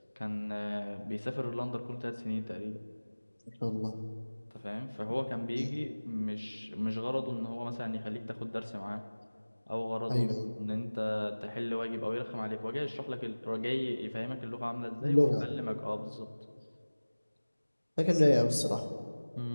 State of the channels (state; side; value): inverted; both; correlation -1.00